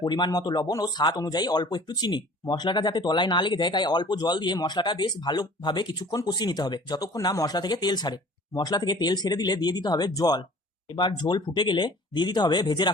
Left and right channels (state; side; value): normal; both; correlation 0.47